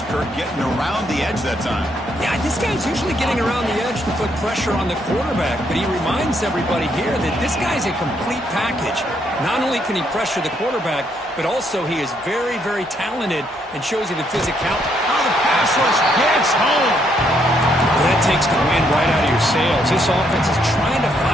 Kirk, getting around the edge that time. Yeah, this guy's usually getting around the edge to put pressure on the quarterback, but he reminds everybody here that this guy's a complete package. Not only can he pressure the quarterback, but also he is very, very talented and shows you the physicality. Oh, the pass rush gets home. Well, that takes the wind right out of your sails. This offense is trying to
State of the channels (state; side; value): normal; both; correlation 0.73